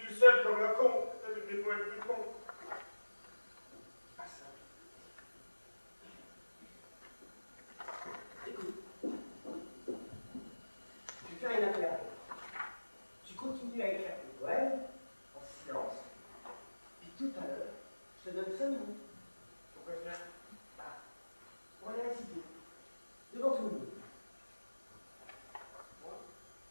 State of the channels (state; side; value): inverted; both; correlation -1.00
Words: tout seul comme un con, avec des poètes plus cons. Pas ça. Écoute. Je vais faire une affaire. Tu continues à écrire tes poèmes, en silence. Puis tout à l'heure, je te donne 5 minutes. Pourquoi faire? On va les réciter. Devant tout le monde.